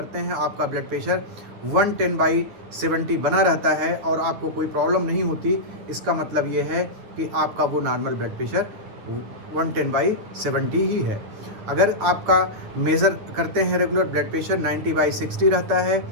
हैं, आपका ब्लड प्रेशर 110/70 बना रहता है और आपको कोई प्रॉब्लम नहीं होती, इसका मतलब ये है कि आपका वो नॉर्मल ब्लड प्रेशर 110/70 ही है। अगर आपका मेज़र करते हैं रेगुलर ब्लड प्रेशर 90/60 रहता है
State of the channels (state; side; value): late; left; 9.9 ms